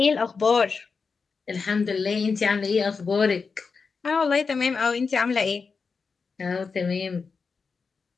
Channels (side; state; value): right; quieter; 5.0 dB